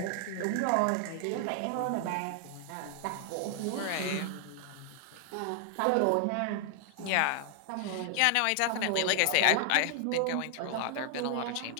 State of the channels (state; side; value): different; both; correlation 0.00